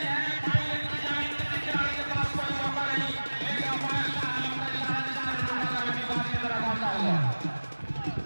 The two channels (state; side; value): inverted; both; correlation -1.00